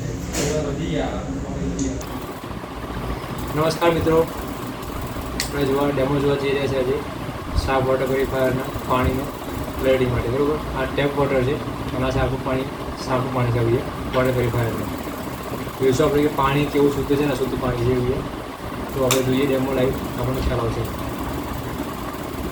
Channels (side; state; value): both; identical; correlation 1.00